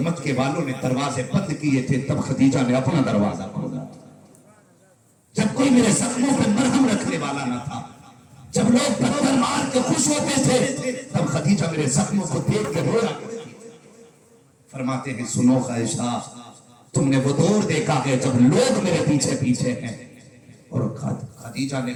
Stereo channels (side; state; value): both; identical; correlation 1.00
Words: مکے والوں نے دروازے بند کیے تھے تب خدیجہ نے اپنا دروازہ کھولا۔ جب کوئی میرے زخموں پہ مرہم رکھنے والا نہ تھا، جب لوگ پتھر مار کے خوش ہوتے تھے تب خدیجہ میرے زخموں کو دیکھ کے رویا کرتی تھی۔ فرماتے ہیں سنو عائشہ، تم نے وہ دور دیکھا ہے جب لوگ میرے پیچھے پیچھے ہیں، اور خدیجہ نے